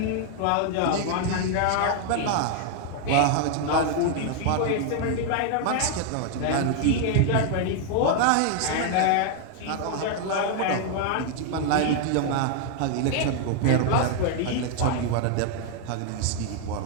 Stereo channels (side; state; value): both; different; correlation 0.00